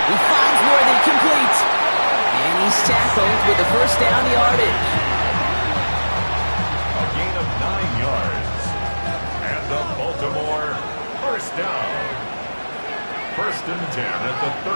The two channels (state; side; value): inverted; both; correlation -1.00